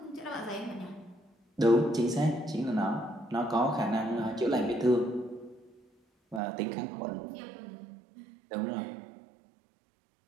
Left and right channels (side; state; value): left; drops out; at 6.4 s